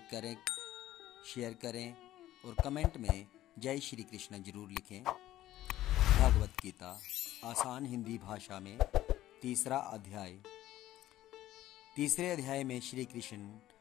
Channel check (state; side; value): quieter; right; 14.1 dB